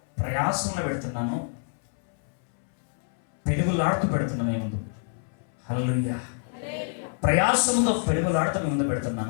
ప్రయాసంలో పెడుతున్నాను, పెనుగులాడుతూ పెడుతున్నాను మీ ముందు. హల్లెలూయా. ప్రయాసంతో పెనుగులాడుతూ మీ ముందు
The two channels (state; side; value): silent; right; 60 dB below the other